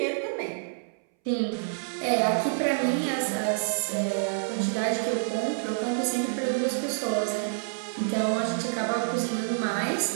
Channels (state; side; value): silent; left; 60 dB below the other